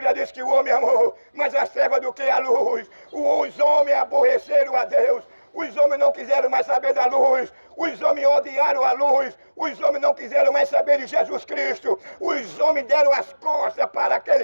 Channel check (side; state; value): both; inverted; correlation -1.00